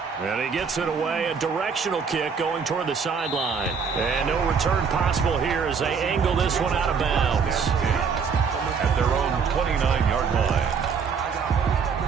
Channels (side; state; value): left; quieter; 6.0 dB